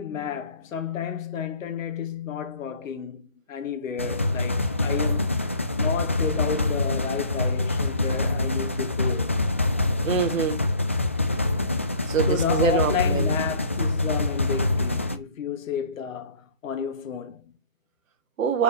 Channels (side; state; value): both; inverted; correlation -0.50